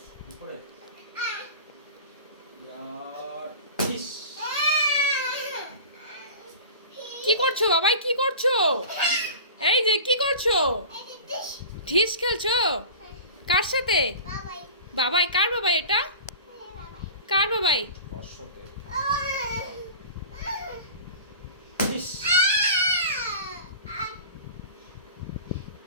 দুপুরে কি করছো বাবাই, কি করছো? এই যে কি করছো? ঢিস খেলছো? কার সাথে? বাবাই। কার বাবাই এটা? কার বাবাই?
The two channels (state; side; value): inverted; both; correlation -0.36